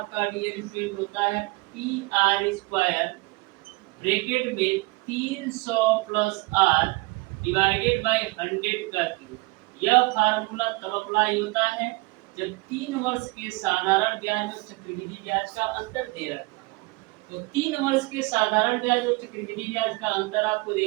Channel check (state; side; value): quieter; left; 24.7 dB